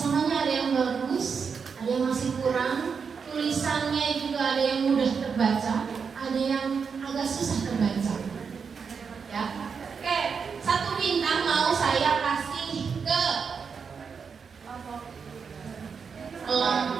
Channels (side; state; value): left; quieter; 5.9 dB